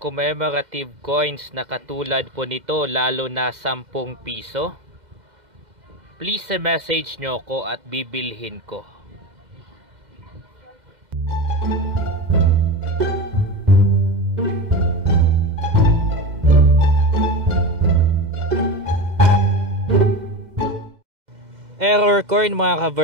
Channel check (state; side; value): late; left; 2.1 ms